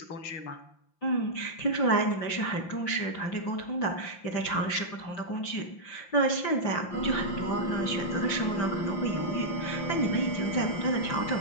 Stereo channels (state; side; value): late; right; 5.8 ms